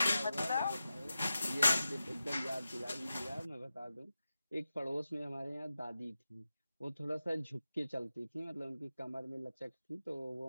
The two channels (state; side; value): inverted; both; correlation -0.93